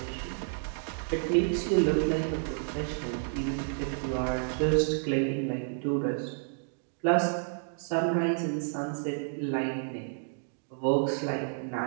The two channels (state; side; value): silent; left; digital silence